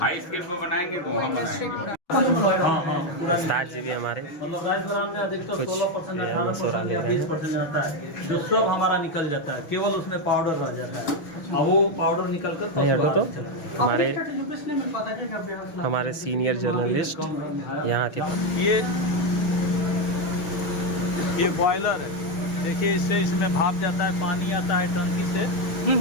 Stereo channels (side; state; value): right; late; 6.4 ms